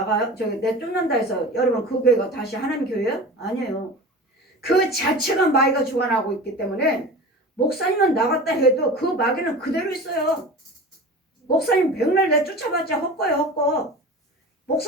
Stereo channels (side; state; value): both; normal; correlation 0.34